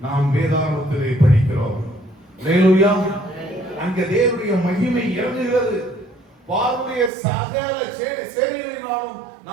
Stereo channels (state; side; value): drops out; left; at 7.1 s